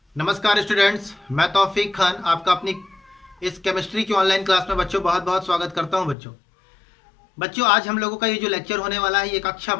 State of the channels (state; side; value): drops out; right; at 6.2 s